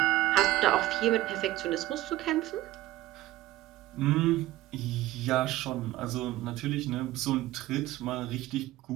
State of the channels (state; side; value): quieter; left; 16.0 dB